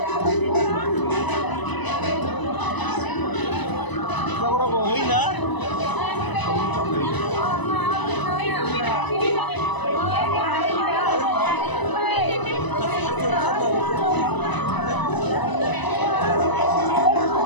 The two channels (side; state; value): right; late; 1.0 ms